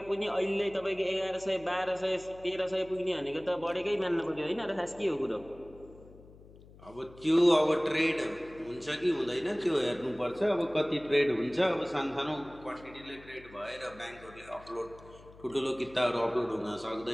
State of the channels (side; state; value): left; noise; hum, 21 dB below the sound